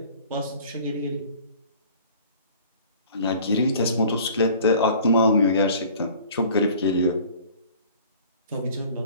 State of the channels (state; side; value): inverted; both; correlation -0.49